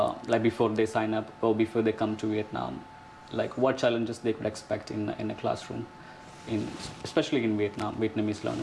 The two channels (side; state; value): both; identical; correlation 1.00